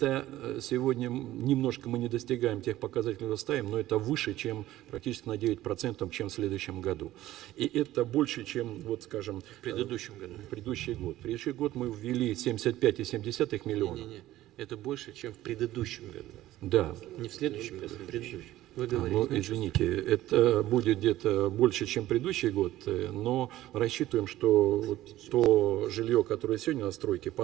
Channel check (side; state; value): left; quieter; 15.0 dB